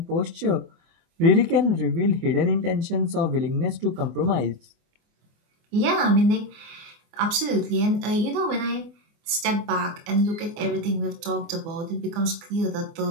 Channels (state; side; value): late; left; 24 ms